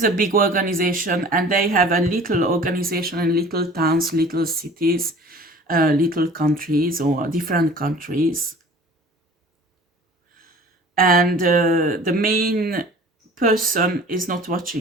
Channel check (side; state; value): both; normal; correlation 0.45